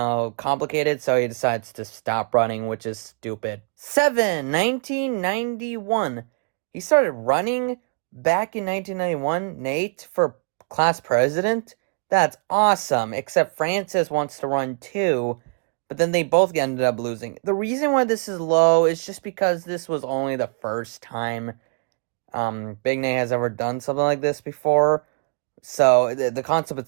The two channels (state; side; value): quieter; left; 39.3 dB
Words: complicated, so he decides to stop running, which is stupid. 1991. He started running back in 1991, Nate, for class president. That's awesome, except Francis wants to run too, but then they both ended up losing. The reason why this is low is just because this was only the first time Big Nate has ever done something like this before. So the concept